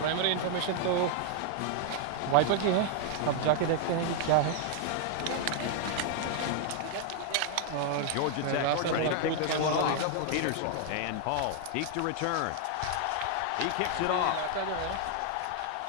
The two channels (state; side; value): different; both; correlation 0.00